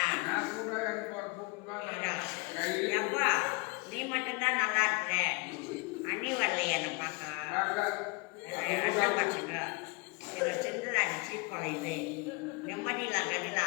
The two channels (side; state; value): right; quieter; 28.5 dB